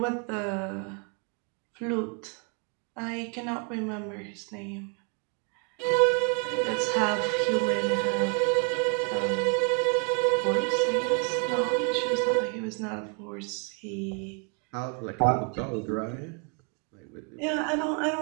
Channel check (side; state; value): left; quieter; 35.7 dB